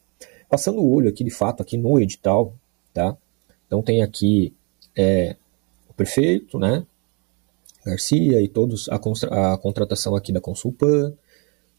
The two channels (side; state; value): left; quieter; 32.8 dB